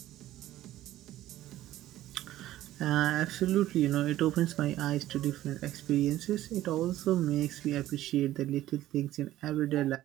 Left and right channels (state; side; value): quieter; left; 14.3 dB